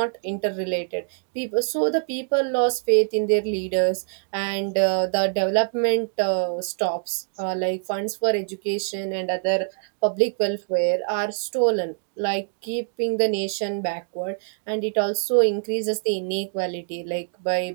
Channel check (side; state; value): left; silent; digital silence